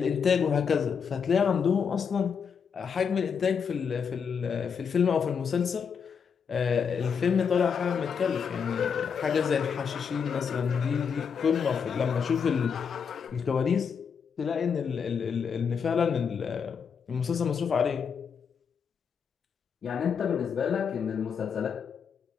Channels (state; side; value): quieter; right; 6.6 dB